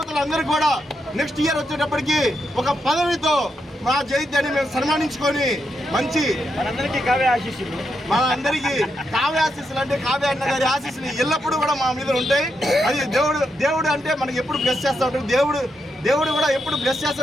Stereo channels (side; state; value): both; normal; correlation 0.83